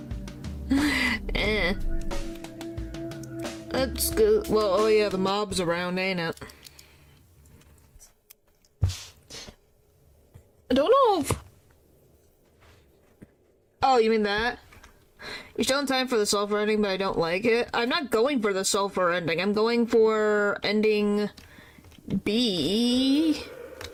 That's good. Well, oh yeah, the mob's around, ain't it? I don't know if... Oh, you mean that? You're still in time for the sulfur ending, but I don't like it. I'm not going for the sulfur ending. I'm going for ending B.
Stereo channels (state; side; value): identical; both; correlation 1.00